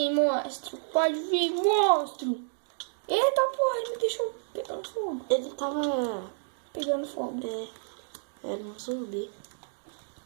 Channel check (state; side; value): silent; left; digital silence